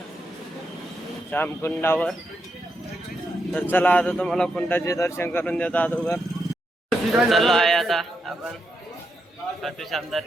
श्याम कुंडावर. तर चला आता तुम्हाला कुंडाचे दर्शन करून देतो अगोदर. चाललो आहे आता आपण खाटू श्याम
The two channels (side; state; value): both; normal; correlation 0.83